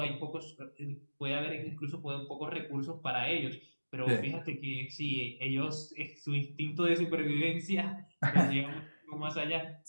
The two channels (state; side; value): inverted; both; correlation -1.00